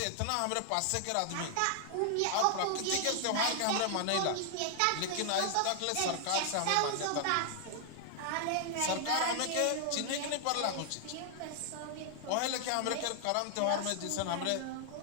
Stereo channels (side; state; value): both; different; correlation 0.00